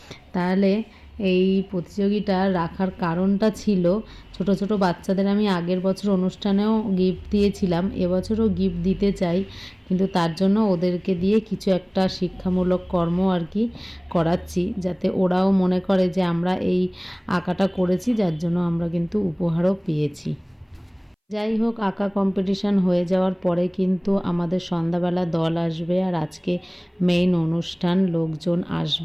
তাহলে এই প্রতিযোগিতা রাখার কারণটা ছিল, ছোট ছোট বাচ্চাদের আমি আগের বছর অনুষ্ঠানেও গিফট দিয়েছিলাম, এবছরও গিফট দিতে চাই, কিন্তু তার জন্য ওদেরকে দিয়ে কিছু একটা শিক্ষামূলক কর্ম আর কি করাচ্ছি, যাতে ওরাও মনে করে যে আমরা এই আঁকাটা করেছি, যার জন্য আমরা কিন্তু উপহারও পেয়েছি। যাই হোক, আঁকা কম্পিটিশান হয়ে যাওয়ার পরে কিন্তু আমাদের সন্ধ্যাবেলা দল আসবে, আর আজকে মেইন অনুষ্ঠান, লোকজন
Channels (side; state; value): both; identical; correlation 1.00